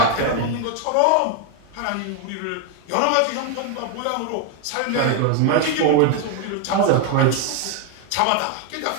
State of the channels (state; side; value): different; both; correlation 0.01